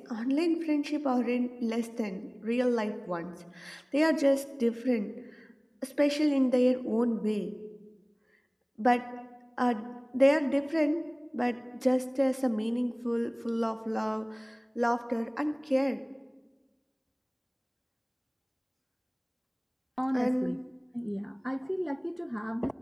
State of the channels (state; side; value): identical; both; correlation 1.00